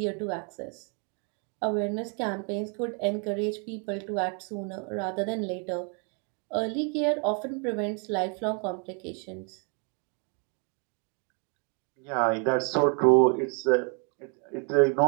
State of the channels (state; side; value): quieter; left; 38.2 dB